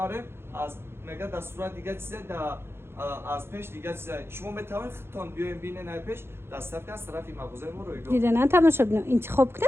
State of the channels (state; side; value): late; left; 0.12 ms